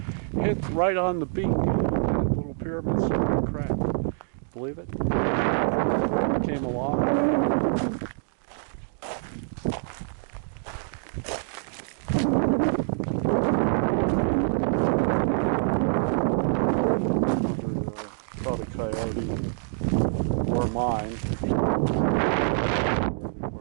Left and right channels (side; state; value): left; silent; digital silence